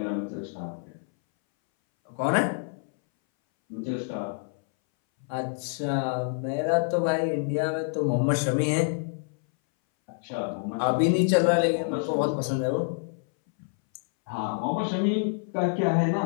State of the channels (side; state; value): right; silent; 60 dB below the other